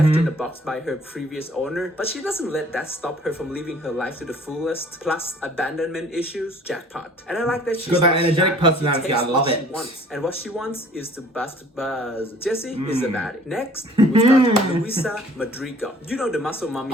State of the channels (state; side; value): normal; both; correlation 0.53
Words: in the box by her previous owner, but she doesn't let that stop her from living her life to the fullest. Plus abandonment issues, jackpot. And I like that she's got that energetic personality. I love it. And what she wants is to bust buzz. Jessie is a baddie. Next, we've got Luisa Madrigal. You know the muscle mommy